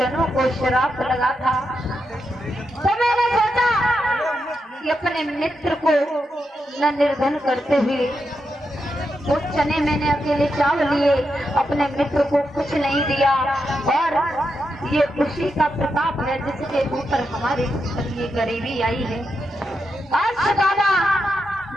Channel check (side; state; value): both; normal; correlation 0.85